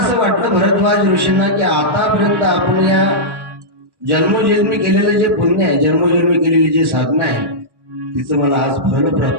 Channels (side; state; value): left; late; 1.1 ms